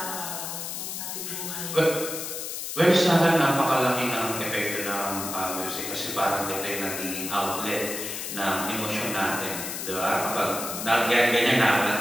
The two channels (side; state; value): left; noise; hiss, 6 dB below the sound